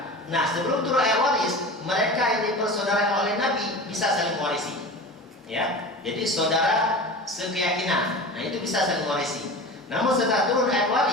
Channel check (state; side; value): normal; both; correlation 0.33